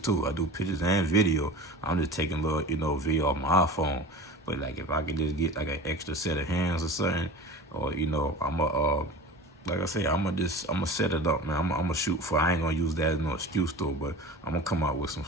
I do pictures and video. I'm just taking little, video off my iPhone. But like if I could just get like an extra set of hands or something, or like I say, I'm gonna set it up, man. I'm gonna shoot for. I ain't gonna use that as no excuse though. But I'm gonna come out with some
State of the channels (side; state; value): both; normal; correlation 0.36